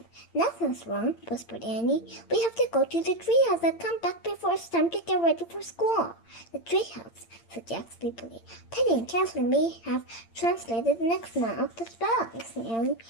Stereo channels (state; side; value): late; right; 8.8 ms